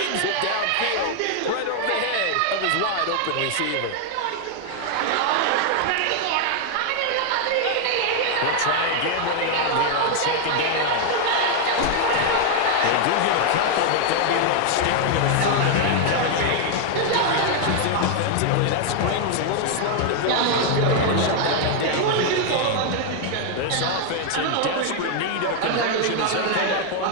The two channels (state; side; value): different; both; correlation 0.00